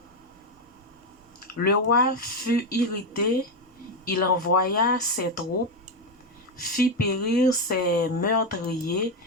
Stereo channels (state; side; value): normal; both; correlation 0.08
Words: Le roi fut irrité, il envoya ses troupes, fit périr ses meurtriers